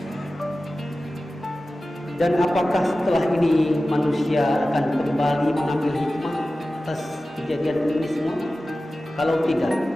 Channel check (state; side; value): normal; both; correlation 0.95